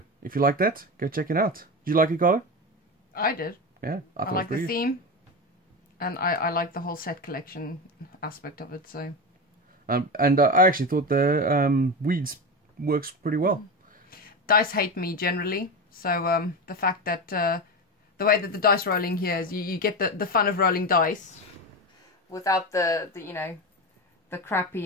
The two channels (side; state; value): both; normal; correlation 0.20